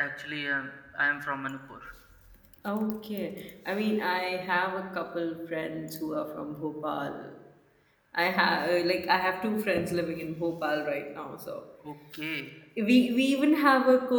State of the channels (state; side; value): identical; both; correlation 1.00